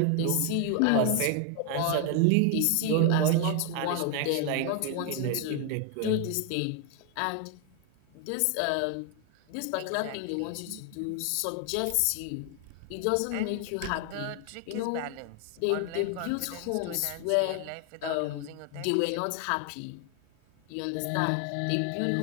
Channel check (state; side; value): different; both; correlation 0.00